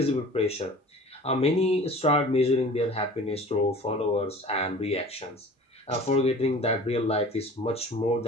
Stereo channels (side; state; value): both; normal; correlation 0.43